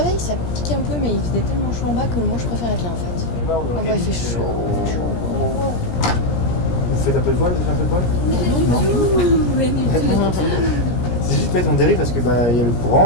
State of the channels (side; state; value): right; late; 17 ms